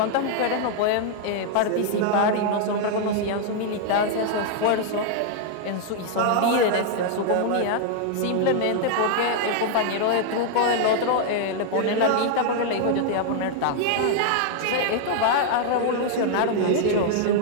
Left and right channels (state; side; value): different; both; correlation 0.00